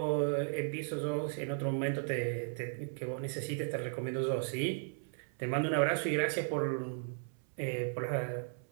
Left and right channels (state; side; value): silent; left; 54 dB below the other